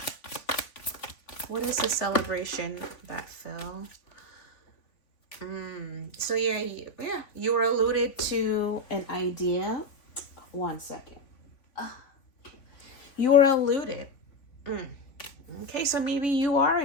What is the celebration that fell? So yeah, you were alluded to an idea. One second. You were alluded. Okay, so maybe you are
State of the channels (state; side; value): late; right; 3.5 ms